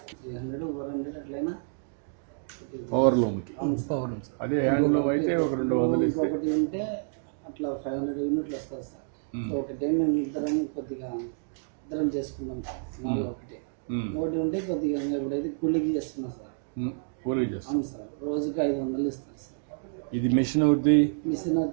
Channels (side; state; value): left; silent; digital silence